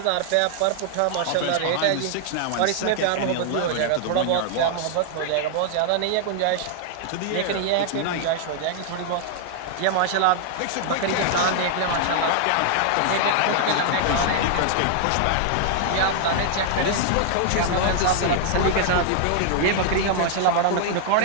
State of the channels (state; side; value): different; both; correlation 0.00